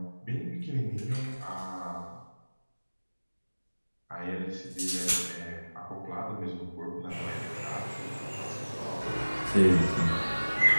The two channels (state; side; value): inverted; both; correlation -1.00